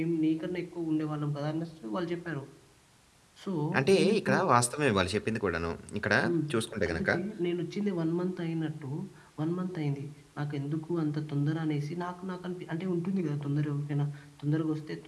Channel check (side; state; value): both; identical; correlation 1.00